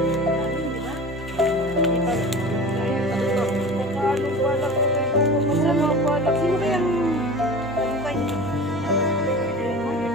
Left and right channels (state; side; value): normal; both; correlation 0.36